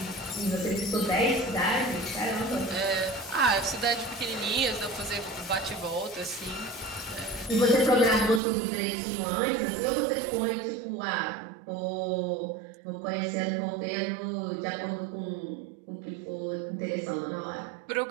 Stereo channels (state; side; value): drops out; left; at 8.4 s